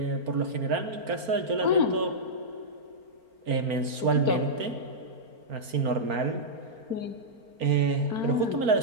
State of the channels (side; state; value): left; late; 4.4 ms